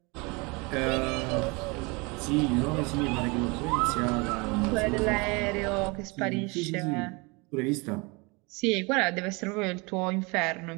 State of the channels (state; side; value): quieter; left; 27.8 dB